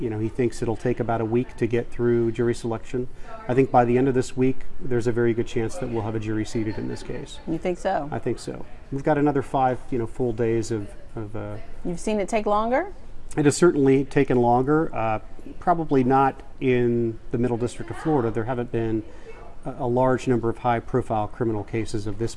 thinks it'll take about a week to get through jury selection. I think by the end of this week, there's a very good chance that we'll have a jury seated in this case. You think so? I think so. We've got another 5, full days of You've seen it take longer? It has certainly taken longer. Probably not in the Middle District of Florida. There haven't been a large number of high-profile criminal cases of this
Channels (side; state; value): both; identical; correlation 1.00